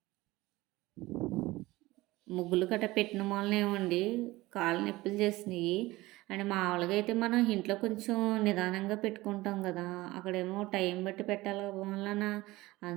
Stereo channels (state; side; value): quieter; left; 19.4 dB